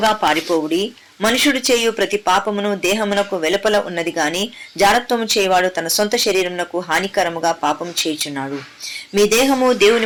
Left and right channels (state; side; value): identical; both; correlation 1.00